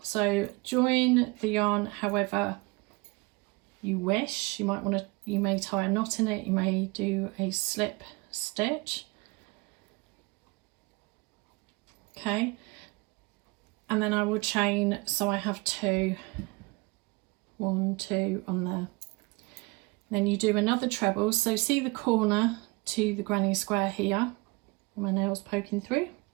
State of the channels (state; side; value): quieter; left; 26.2 dB